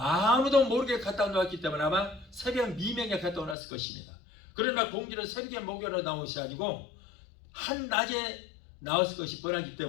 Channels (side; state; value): right; drops out; at 3.6 s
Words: 모르게 갖다 놓았기 때문에 아마 새벽 미명에 갖다 놨을 것입니다. 그러나 공주는 새벽에 목욕하러 나온 것이 아니고 한낮에 나왔을 것이 뻔하기